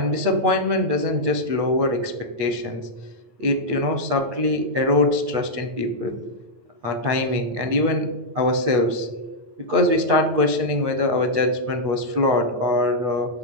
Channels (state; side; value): late; left; 8.9 ms